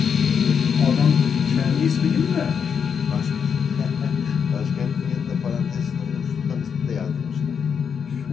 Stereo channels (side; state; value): right; quieter; 6.9 dB